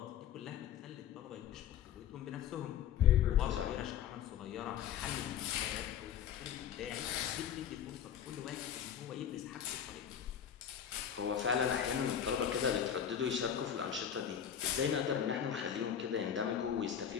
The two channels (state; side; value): quieter; right; 9.0 dB